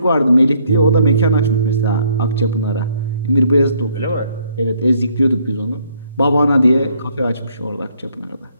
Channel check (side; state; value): both; inverted; correlation -0.66